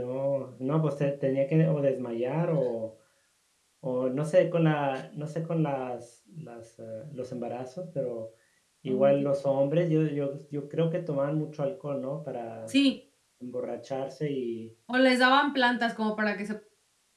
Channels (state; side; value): identical; both; correlation 1.00